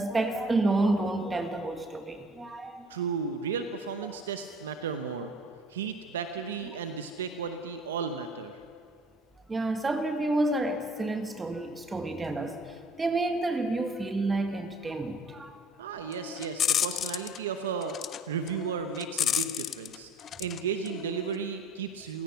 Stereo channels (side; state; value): both; normal; correlation 0.51